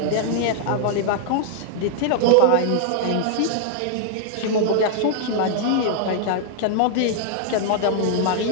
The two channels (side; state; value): both; different; correlation -0.01